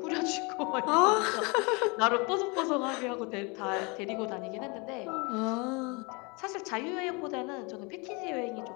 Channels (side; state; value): right; quieter; 29.3 dB